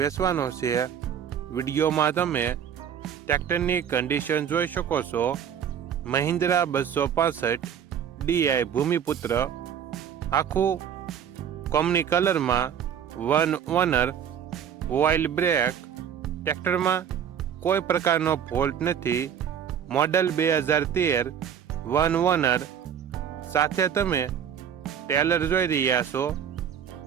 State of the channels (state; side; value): quieter; left; 8.7 dB